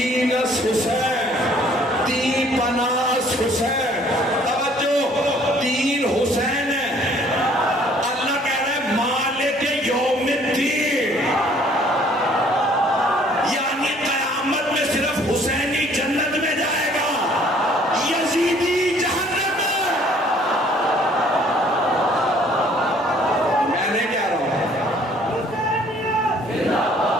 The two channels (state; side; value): normal; both; correlation 0.58